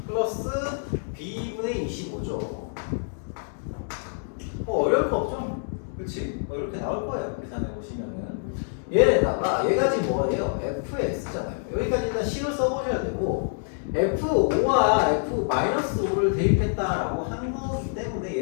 플러스 b분의 25죠. 뭐 어려울 거 없죠? 그치? 뭐 이렇게 나올 거예요. 계산해 보시면은 얘에다가 얘가 지금 뭐예요? fx잖아요. 여기까지 일단 식을 써보셔야 되고, f5와 f-5를 대입했다라고 한 거기 때문에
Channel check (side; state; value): right; silent; digital silence